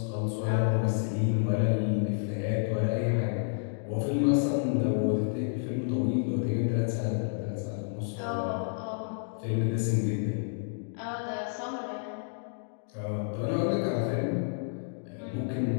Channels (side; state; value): right; silent; digital silence